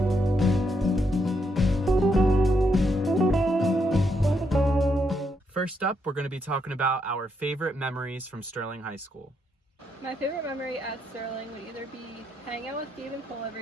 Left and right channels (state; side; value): normal; both; correlation 0.78